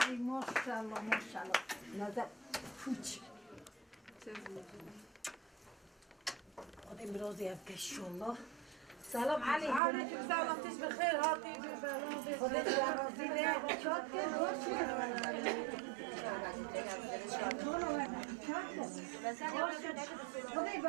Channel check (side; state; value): left; drops out; at 9.8 s